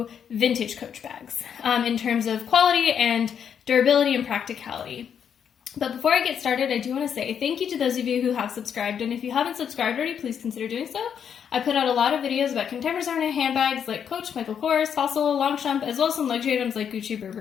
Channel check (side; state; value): right; quieter; 8.0 dB